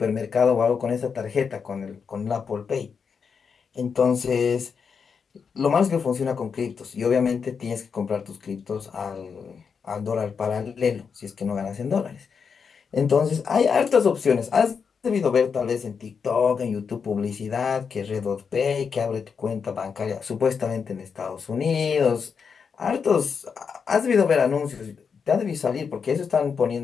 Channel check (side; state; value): right; quieter; 6.1 dB